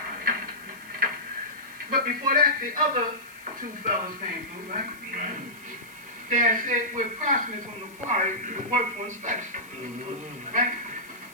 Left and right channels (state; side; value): noise; left; hiss, 23 dB below the sound